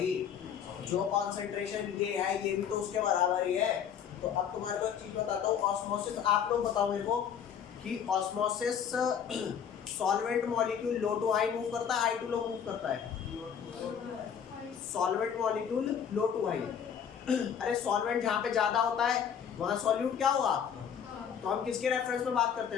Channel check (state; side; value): quieter; right; 8.1 dB